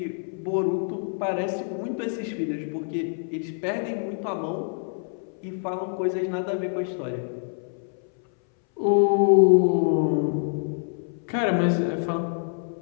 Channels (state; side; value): silent; right; 60 dB below the other